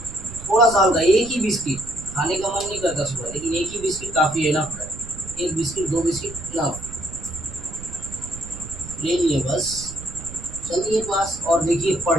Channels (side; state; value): right; noise; rumble, 13 dB below the sound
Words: थोड़ा सा हल्का, एक ही बिस्किट, खाने का मन नहीं करता सुबह, लेकिन एक ही बिस्किट काफ़ी है ना, एक बिस्किट 2 बिस्किट इनफ। ले लिए बस, चलिए क्लास और देखिए